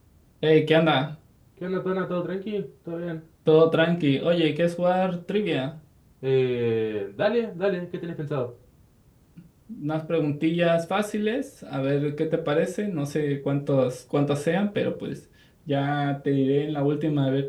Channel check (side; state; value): both; identical; correlation 1.00